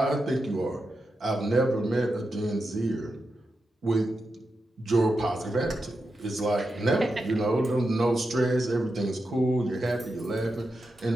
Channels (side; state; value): both; normal; correlation 0.88